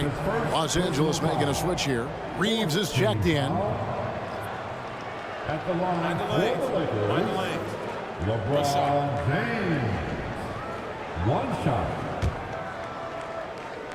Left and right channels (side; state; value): both; identical; correlation 1.00